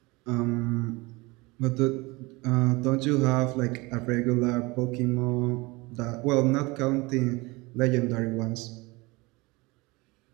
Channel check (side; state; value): left; quieter; 24.0 dB